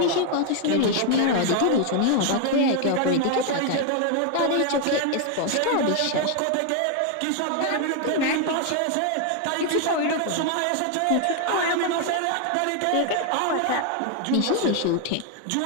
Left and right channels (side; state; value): both; different; correlation 0.01